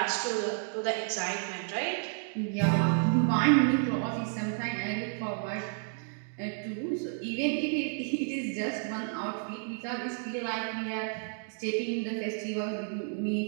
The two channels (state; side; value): silent; left; 57 dB below the other